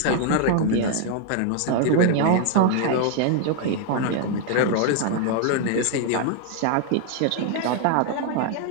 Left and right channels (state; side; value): different; both; correlation 0.00